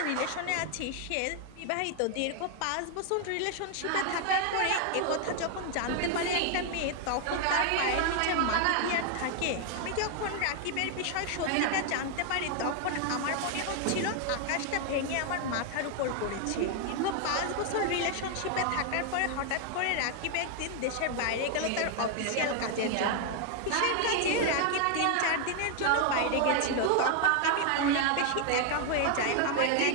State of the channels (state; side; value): different; both; correlation 0.00